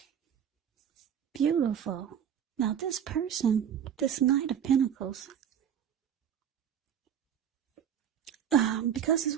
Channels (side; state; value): left; quieter; 8.9 dB